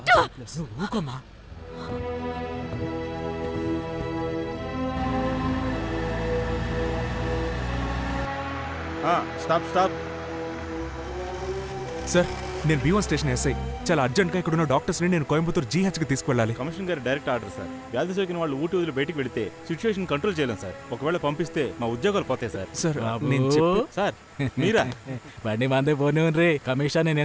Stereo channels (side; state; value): both; identical; correlation 1.00